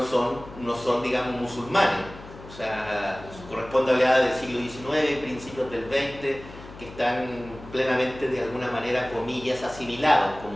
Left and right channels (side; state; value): left; noise; hum, 17 dB below the sound